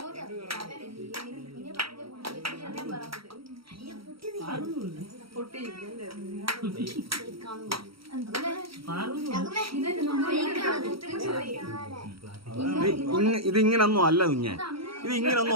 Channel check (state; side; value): late; left; 0.75 ms